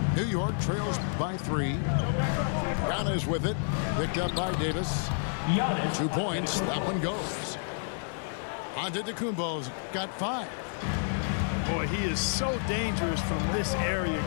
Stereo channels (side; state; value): right; silent; digital silence